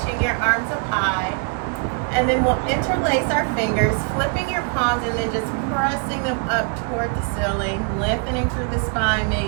your arms up high. And then we'll interlace our fingers, flipping your palms and then just pressing them up toward the ceiling, lengthening through the spine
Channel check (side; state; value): left; quieter; 35.4 dB